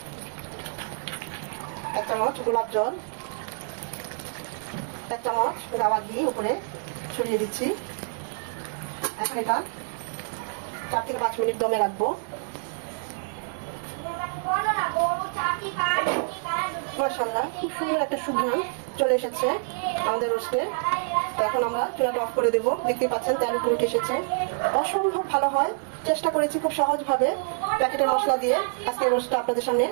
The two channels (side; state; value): left; silent; digital silence